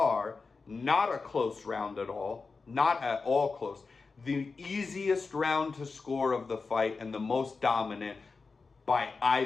not a close round at all, not at all close. The easiest round to score of the fight and the most dominant by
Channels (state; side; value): quieter; right; 4.4 dB